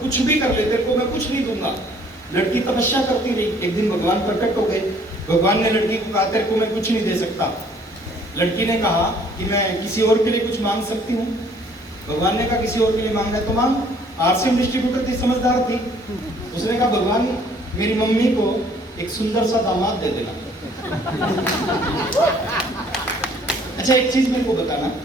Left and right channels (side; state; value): both; normal; correlation 0.59